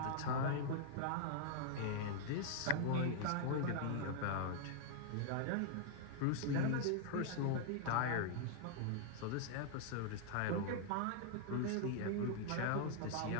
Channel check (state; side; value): different; both; correlation 0.00